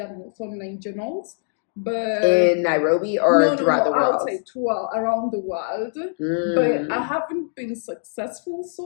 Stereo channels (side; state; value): right; silent; 64 dB below the other